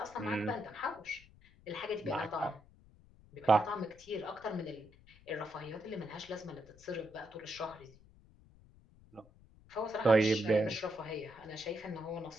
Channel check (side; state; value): left; noise; rumble, 25 dB below the sound